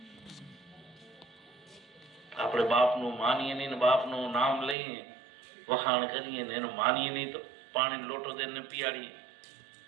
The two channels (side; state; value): left; drops out; at 4.8 s